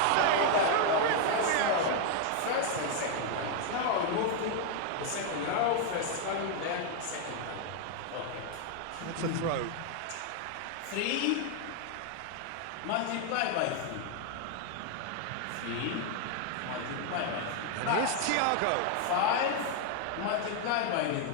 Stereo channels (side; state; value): both; different; correlation 0.00